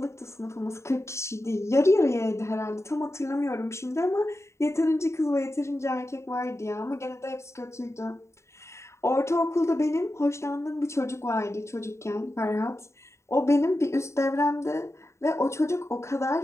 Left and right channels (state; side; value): late; right; 0.14 ms